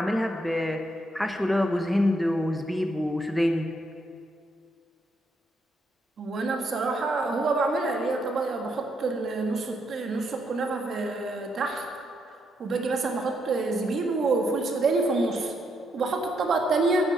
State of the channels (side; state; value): both; normal; correlation 0.77